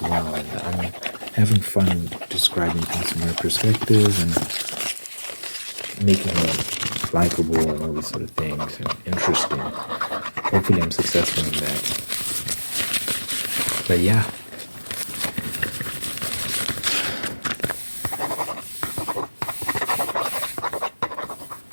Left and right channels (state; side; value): inverted; both; correlation -1.00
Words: well. And I'm having fun describing things from her perspective and making her likable and all these sort of things and interesting. Hopefully I'm successful in that. But yeah.